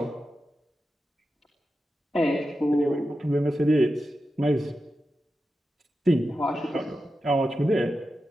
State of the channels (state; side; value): normal; both; correlation 0.90